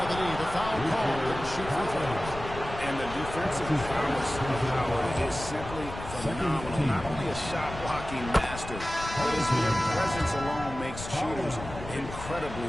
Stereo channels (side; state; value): left; noise; rumble, 11 dB below the sound